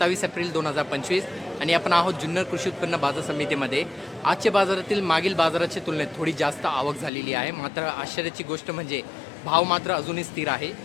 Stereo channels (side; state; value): right; drops out; at 7.1 s